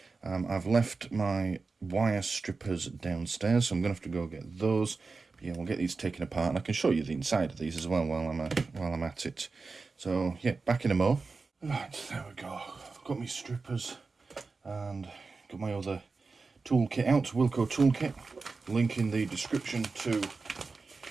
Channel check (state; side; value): quieter; left; 4.2 dB